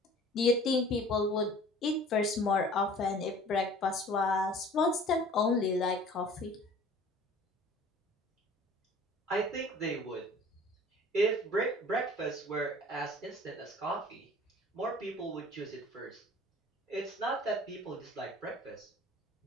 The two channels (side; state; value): both; normal; correlation 0.47